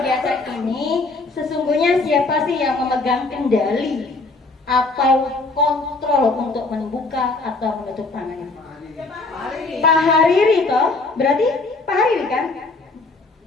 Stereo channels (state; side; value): quieter; right; 3.5 dB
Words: ini sesungguhnya siapa sih yang memegang kendali atau kontrol untuk membuka atau menutup tangannya? Pak Hariri toh, berarti Pak Hariri kan?